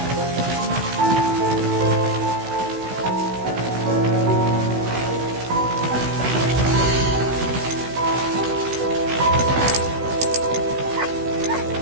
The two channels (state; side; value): late; left; 16 ms